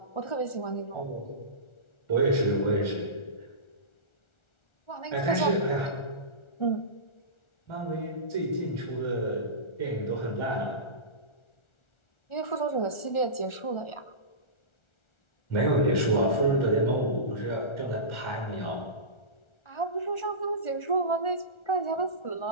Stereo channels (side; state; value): right; late; 1.4 ms